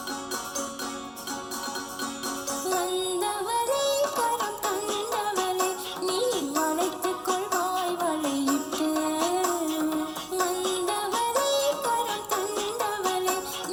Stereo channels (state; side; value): identical; both; correlation 1.00